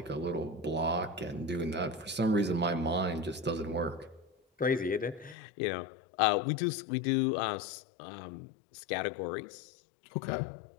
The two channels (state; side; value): drops out; right; at 5.4 s